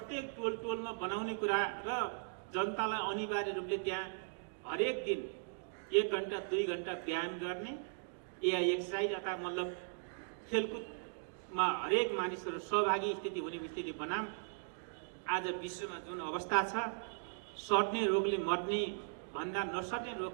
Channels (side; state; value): left; silent; digital silence